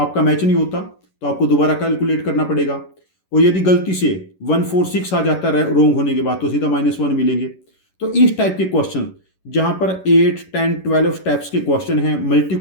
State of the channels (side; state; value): right; late; 11 ms